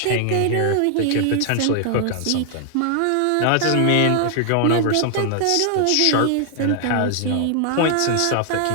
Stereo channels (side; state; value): both; different; correlation 0.00